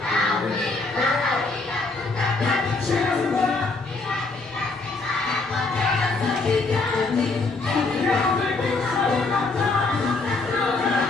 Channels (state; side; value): quieter; right; 3.6 dB